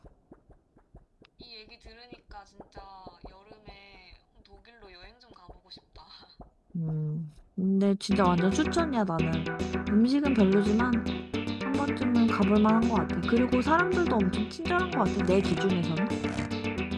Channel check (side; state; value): both; identical; correlation 1.00